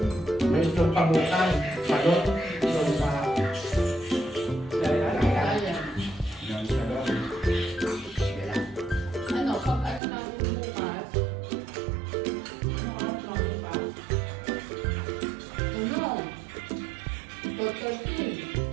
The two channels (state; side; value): drops out; left; at 10.0 s